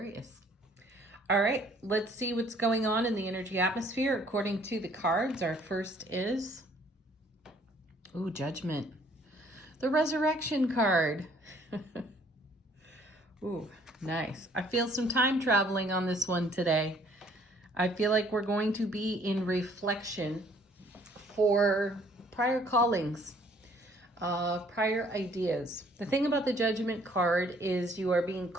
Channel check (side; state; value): both; normal; correlation 0.60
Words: All right, let's see what's going on in the energy atmosphere according to the cards. Our first is, Judgment. The Resurrection card. Ooh, nice. I feel some time traveling on this one today. I feel like we're going to be in reflection for prior callings, prior ideas. The thing about the Judgment card is you are being